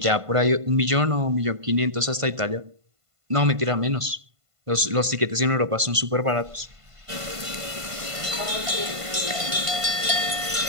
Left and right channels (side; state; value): left; late; 1.5 ms